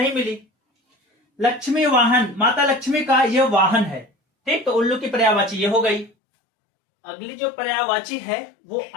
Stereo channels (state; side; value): drops out; right; at 6.1 s